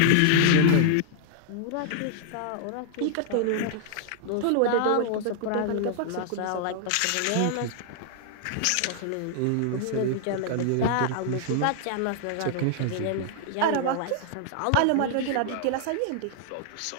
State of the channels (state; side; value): different; both; correlation -0.01